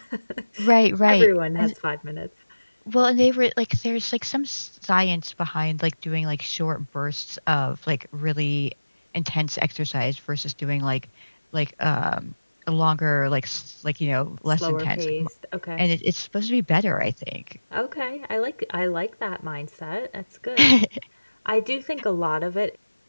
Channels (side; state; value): both; inverted; correlation -1.00